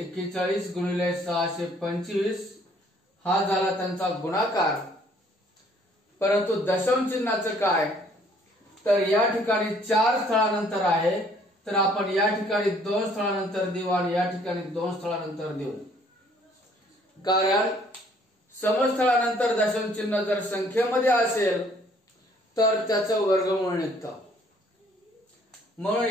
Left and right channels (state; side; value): normal; both; correlation 0.61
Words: गुणिले 625 हा झाला त्यांचा गुणाकार। परंतु दशांश चिन्हाचं काय, तर या ठिकाणी 4 स्थळानंतर आहे, तर आपण या ठिकाणी 2 स्थळानंतर देऊ आणि या ठिकाणी 2 स्थळानंतर देऊ, कारण समस्थळानंतर दशांश चिन्ह जर संख्येमध्ये असेल तर त्याचं वर्गमूळ निघतं। म्हणून